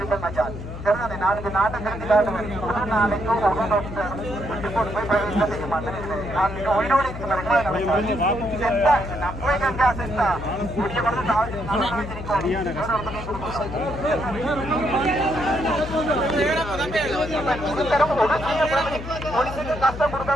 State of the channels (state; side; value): noise; left; hum, 10 dB below the sound